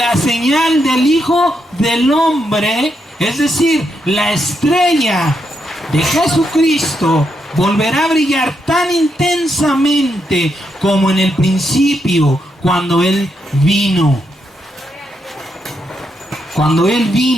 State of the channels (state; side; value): normal; both; correlation 0.81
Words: señal del Hijo del Hombre, es decir, la estrella de Jesucristo volverá a brillar tan intensamente como en el principio, cuando Él vino. Cuando Él